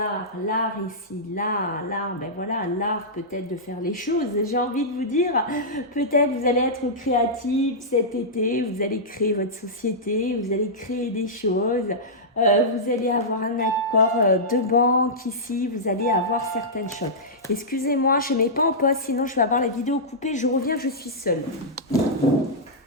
l'art ici, l'art, ben voilà, l'art peut-être de faire les choses. J'ai envie de vous dire, peut-être vous allez être créatif cet été, vous allez créer votre société, vous allez créer des choses, vous allez avoir un accord de banque ici, vous allez avoir certaines choses. Excusez-moi, je ne mets pas en pause, sinon je vais avoir la vidéo coupée, je reviens, je suis seule.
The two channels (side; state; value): both; normal; correlation -0.13